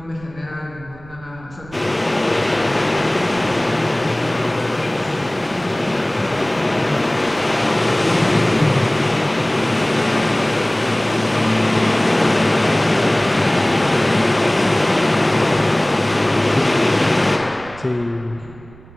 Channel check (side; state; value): right; noise; rumble, 21 dB below the sound